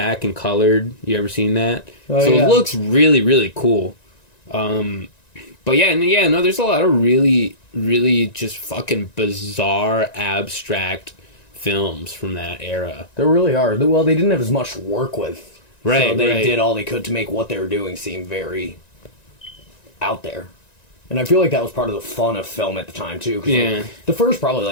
and colored. You ever seen that? Oh, so yeah. It looks really, really cool. But no, there's a lot of really, really just fucking bizarre, abstract films from that era. There really are. Well, they didn't have as much to work with. Right, So they right. did all they could to make what they were doing seem very out there. And I feel like that was part of the fun of film at the time, too. 'Cause, Yeah. like, the first probably,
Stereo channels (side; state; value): right; late; 1.9 ms